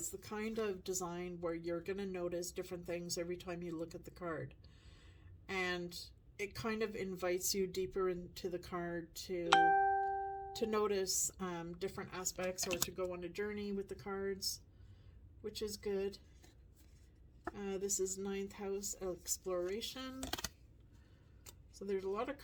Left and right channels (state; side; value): identical; both; correlation 1.00